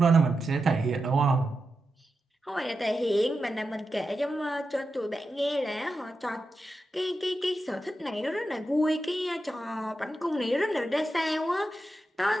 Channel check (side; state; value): both; normal; correlation 0.89